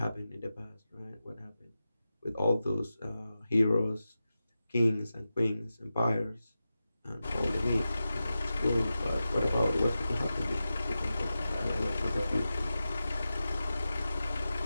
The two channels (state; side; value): inverted; both; correlation -0.93